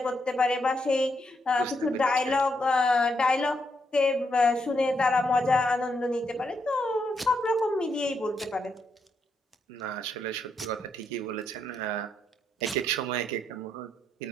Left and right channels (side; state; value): both; normal; correlation 0.79